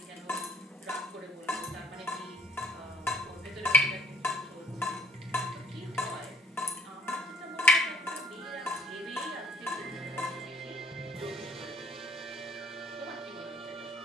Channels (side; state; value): both; normal; correlation 0.62